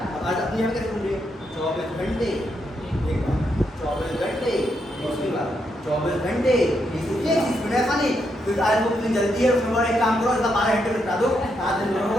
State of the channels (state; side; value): normal; both; correlation 0.80